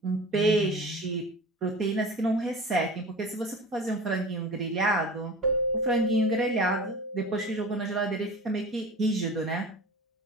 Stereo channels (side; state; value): both; normal; correlation 0.36